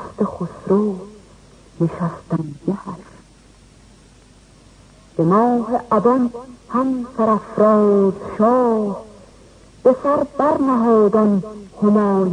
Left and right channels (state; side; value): identical; both; correlation 1.00